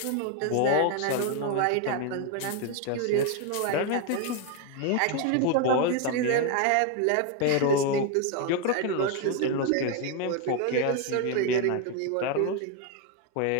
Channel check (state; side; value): different; both; correlation 0.01